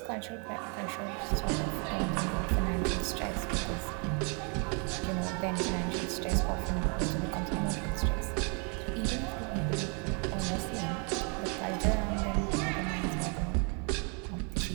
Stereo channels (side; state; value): left; quieter; 36.4 dB